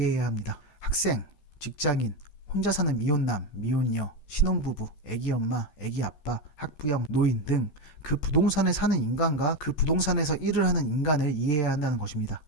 합니다. 학생, 직장인, 혼자 사는 미혼남, 미혼녀, 신혼부부, 애기 엄마, 애기 아빠, 학부형, 노인 등 그 부동산에 사는 인간과 그 부동산에서 일을 하는 인간을 이해해야 한다는 것입니다.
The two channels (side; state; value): right; late; 14 ms